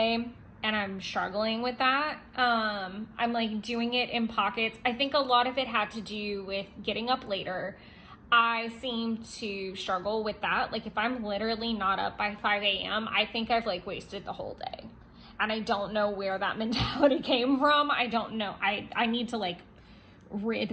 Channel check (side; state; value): both; identical; correlation 1.00